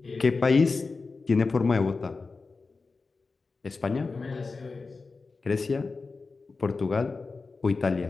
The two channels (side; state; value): right; quieter; 4.1 dB